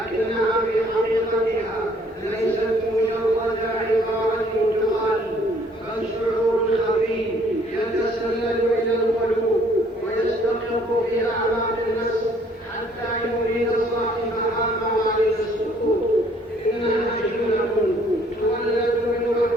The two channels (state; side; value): normal; both; correlation 0.61